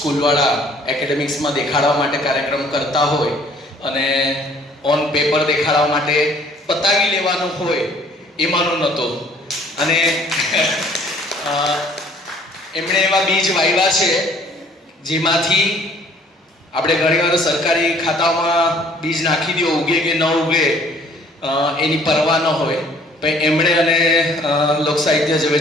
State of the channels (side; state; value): both; normal; correlation 0.57